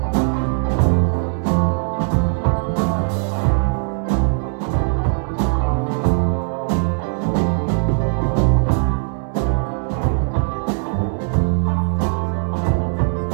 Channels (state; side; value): silent; left; 58 dB below the other